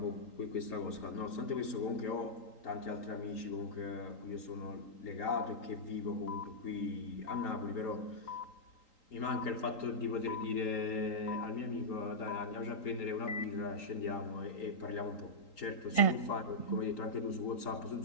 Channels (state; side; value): late; right; 3.8 ms